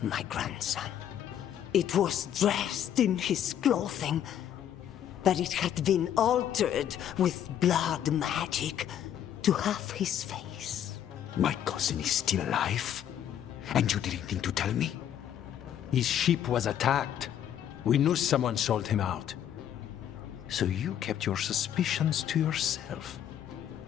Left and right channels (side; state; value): right; quieter; 10.2 dB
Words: my grandson. It was dressed in his clothing, but it had been altered with blood magic to have his face. My cousin is still alive? And you didn't think to tell me? His ship was attacked. We knew someone sold him out. So you kept your suspicions to yourself.